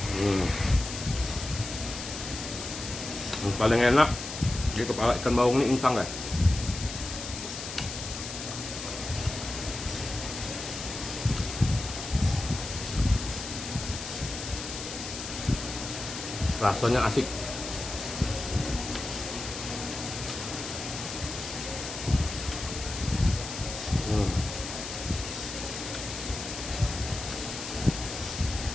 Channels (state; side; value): noise; left; hiss, 8 dB below the sound